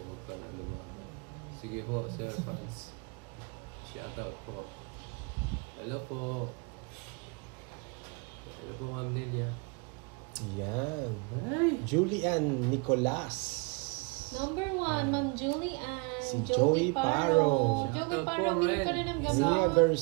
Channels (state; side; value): quieter; left; 31.4 dB